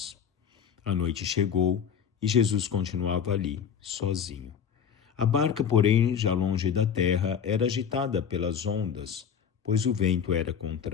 A noite chegou e Jesus continuava ali, sozinho. A barca, porém, já longe da terra, era agitada pelas ondas, pois o vento era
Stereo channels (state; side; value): quieter; right; 7.6 dB